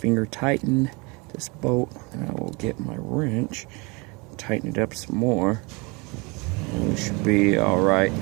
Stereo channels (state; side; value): quieter; left; 28.1 dB